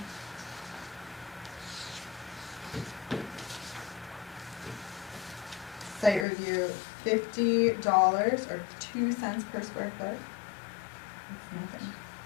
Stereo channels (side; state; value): right; drops out; at 6.2 s